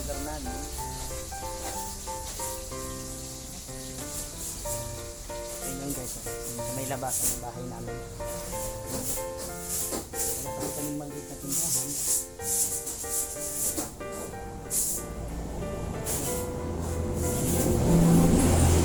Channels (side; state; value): both; identical; correlation 1.00